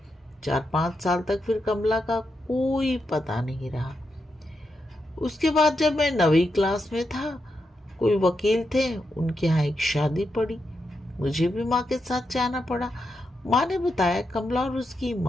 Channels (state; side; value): normal; both; correlation 0.85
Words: 4-5 साल तक फिर कमला का कोई पता नहीं रहा। उसके बाद जब मैं 9वीं क्लास में था, कोई वकील थे, उनके यहाँ एक शादी पड़ी। मुझे भी माँ के साथ जाना पड़ा। माँ ने बताया कमला और उसकी